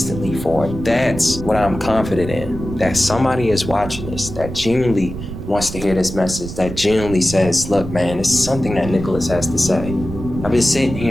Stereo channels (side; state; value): right; noise; rumble, 9 dB below the sound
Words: for. That's what I'm confident in, that somebody is watching this, that genuinely wants to hear this message, that genuinely says, look, man, it's something that Nicholas has to say. I've been sitting